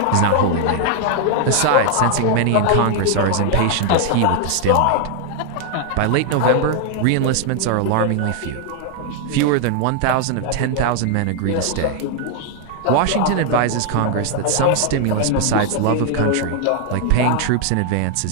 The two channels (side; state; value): both; different; correlation 0.00